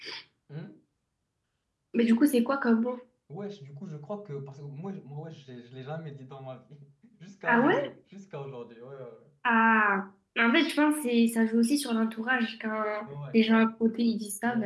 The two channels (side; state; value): both; identical; correlation 1.00